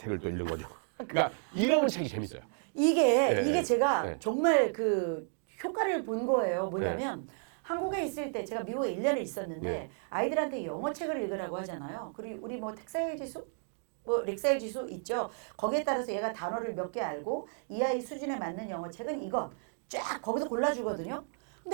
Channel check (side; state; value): left; silent; 56 dB below the other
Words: 또 읽는 거죠. 그러니까 이러면 책이 재밌어요. 이게 제가 정말 그 효과를 본 거예요. 뭐냐면 한국에 있을 때 제가 미국에 1년을 있었는데 아이들한테 영어 책을 읽으라고 하잖아요. 그리고 우리 뭐 텍사일 지수? 렉사일 지수 있죠. 거기에 따라서 얘가 단어를 몇 개 알고 이 아이 수준에 맞는 영어 책은 이것 쫙 거기서 골라주거든요.